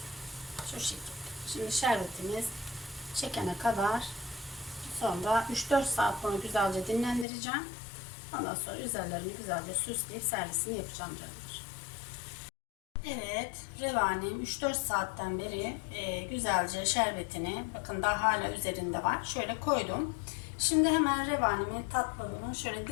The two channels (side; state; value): right; drops out; at 7.2 s